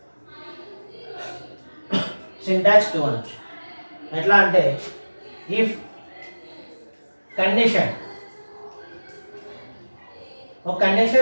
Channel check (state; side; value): inverted; both; correlation -1.00